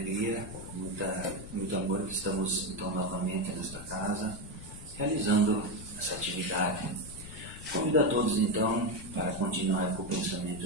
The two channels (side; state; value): left; noise; rumble, 13 dB below the sound